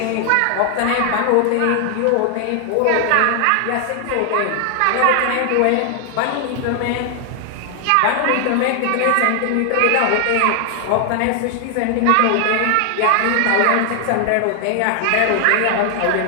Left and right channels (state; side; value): different; both; correlation 0.00